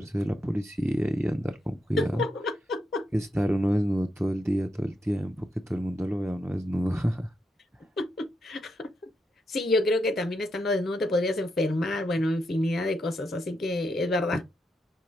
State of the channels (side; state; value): both; normal; correlation 0.83